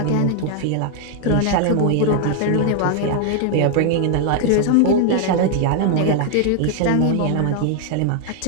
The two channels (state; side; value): different; both; correlation 0.00